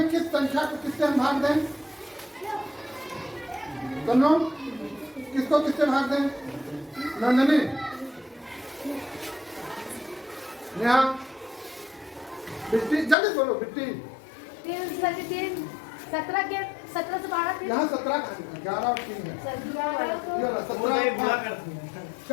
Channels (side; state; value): right; drops out; at 13.2 s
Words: किस संख्या को किससे हम भाग दें? कन्नो, किसको किससे भाग दें? नंदनी, नेहा, बिट्टी, जल्दी बोलो बिट्टी। 17 के 17 से 12 यहाँ 17 11 और 3 है। 17